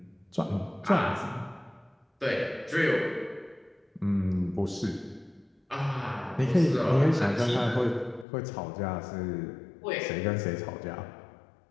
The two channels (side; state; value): right; drops out; at 8.2 s